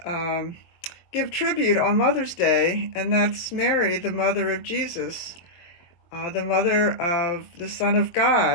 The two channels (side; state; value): right; late; 23 ms